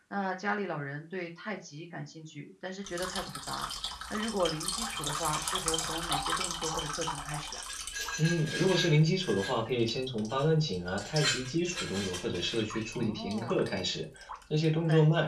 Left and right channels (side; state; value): both; identical; correlation 1.00